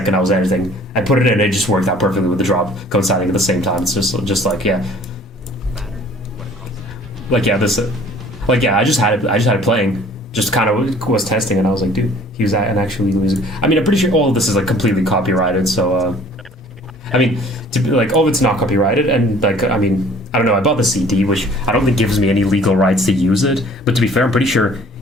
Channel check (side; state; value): both; normal; correlation 0.52